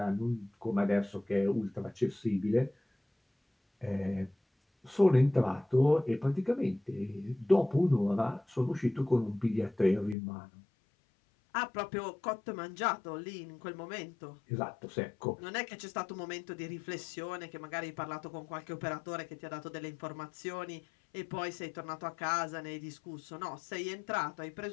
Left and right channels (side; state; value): right; drops out; at 10.2 s